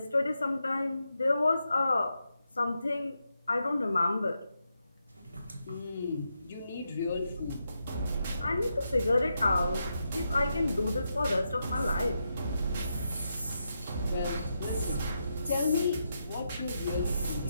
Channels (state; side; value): inverted; both; correlation -0.84